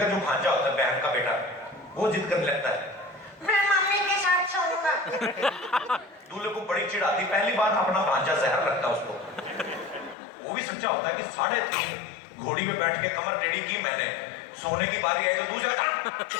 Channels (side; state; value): right; drops out; at 10.2 s